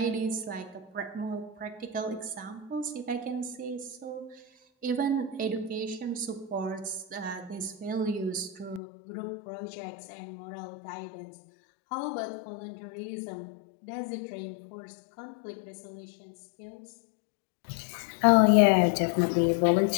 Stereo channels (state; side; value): drops out; right; at 8.8 s